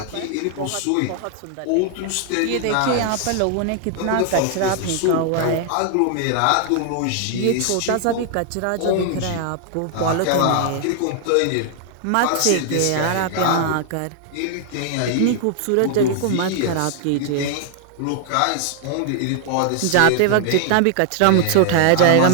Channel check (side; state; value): both; different; correlation 0.00